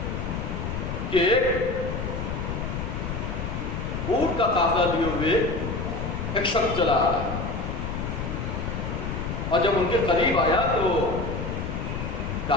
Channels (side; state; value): left; noise; rumble, 4 dB below the sound